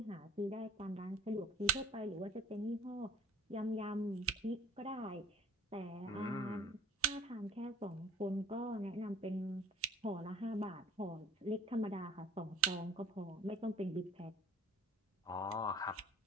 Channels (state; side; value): normal; both; correlation 0.50